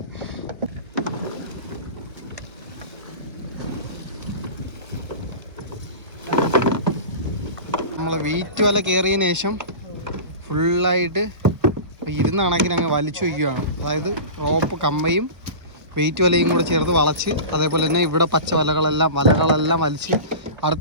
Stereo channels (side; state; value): left; late; 1.1 ms